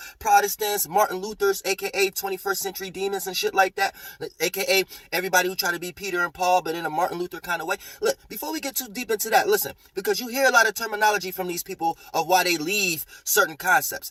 Protestants, Martin Luther's, a.k.a. 21st century demons and shit like that, a.k.a. everybody who try to be Peter and Paul, but in a Martin Luther kind of way. Look, before we get too deep into that, listen, because you hear a lot of terminology from these people of why they leave certain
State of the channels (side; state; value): both; identical; correlation 1.00